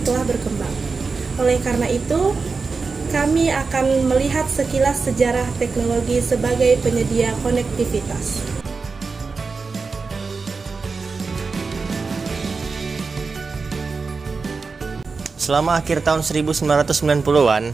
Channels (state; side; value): quieter; left; 4.5 dB